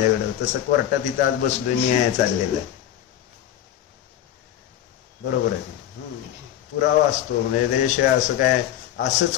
तसं कोर्टात इथं आज बसलोय, न्याय चाललेला आहे, बरोबर आहे. पुरावा असतो म्हणजे त्याच्याशिवाय असं काय असंच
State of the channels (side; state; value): right; quieter; 11.3 dB